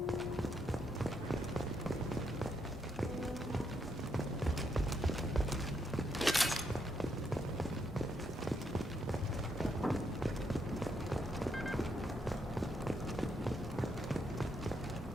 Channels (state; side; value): normal; both; correlation 0.77